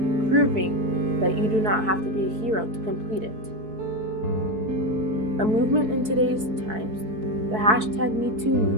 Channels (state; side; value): late; left; 4.6 ms